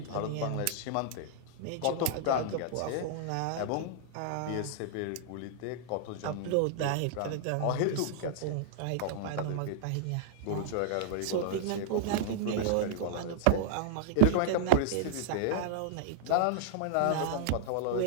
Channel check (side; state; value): both; different; correlation -0.01